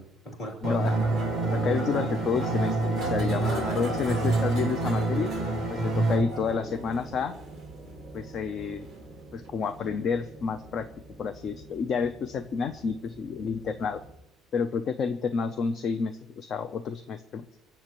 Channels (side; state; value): both; normal; correlation 0.69